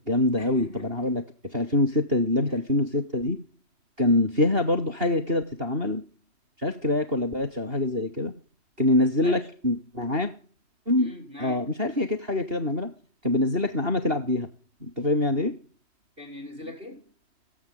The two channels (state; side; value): late; left; 2.8 ms